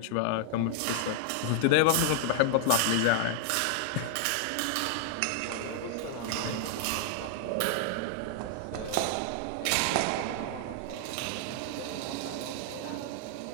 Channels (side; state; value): both; different; correlation -0.01